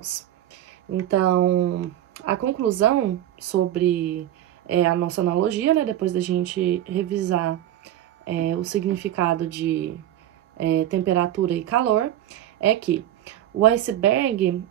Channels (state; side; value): quieter; left; 12.3 dB